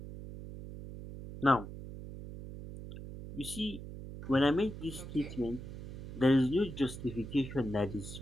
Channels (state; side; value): noise; right; hum, 10 dB below the sound